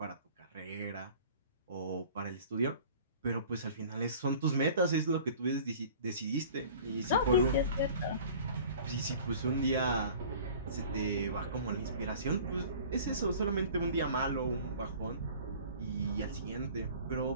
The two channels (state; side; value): inverted; both; correlation -0.45